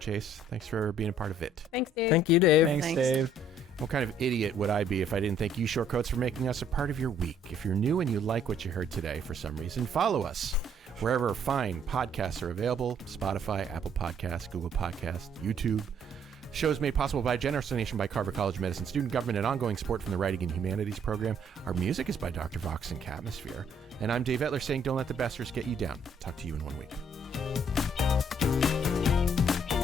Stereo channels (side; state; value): both; normal; correlation 0.63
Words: thanks for being a part of it. Thanks, Dave. Thank you, Dave. Thanks, Thanks. Dave. What kind of idiot would I be if I didn't thank you, Shortcoats, for making us a part of your week? If you're new and you like what you heard today for some reason, follow us wherever fine podcasts are available: Spotify, Apple Podcasts, Google Podcasts, YouTube. Shows made possible by a generous donation by Carver College of Medicine student government and ongoing support from the Writing and Humanities program. Our music is by Dr. Vox and Catmosphere. And I'm Dave Etler saying, don't let the besters get you down. Talk to you in 1 week.